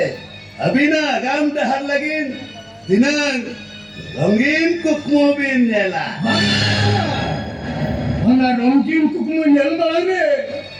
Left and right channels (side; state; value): both; identical; correlation 1.00